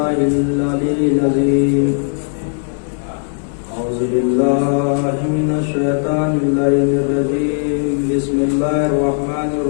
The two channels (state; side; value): silent; right; digital silence